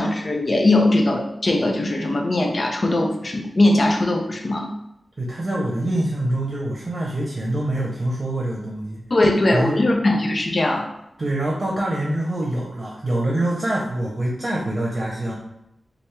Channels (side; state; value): both; normal; correlation 0.92